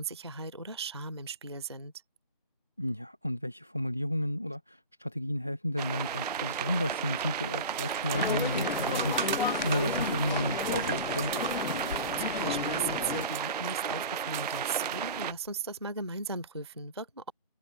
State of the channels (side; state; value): both; inverted; correlation -0.34